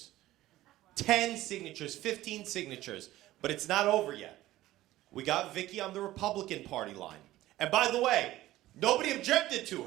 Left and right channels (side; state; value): left; quieter; 15.8 dB